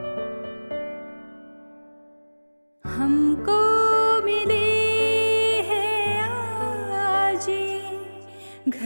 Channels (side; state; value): both; inverted; correlation -1.00